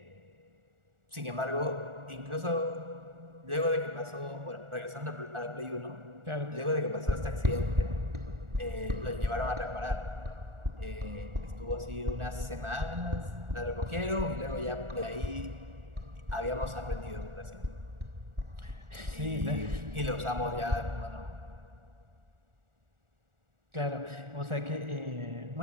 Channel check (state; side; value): late; left; 1.4 ms